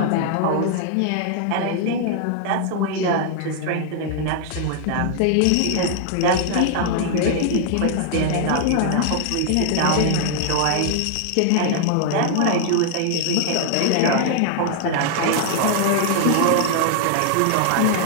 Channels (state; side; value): different; both; correlation 0.00